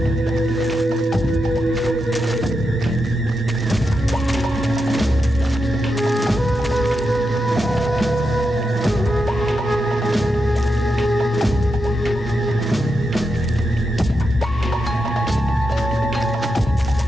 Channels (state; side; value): normal; both; correlation 0.86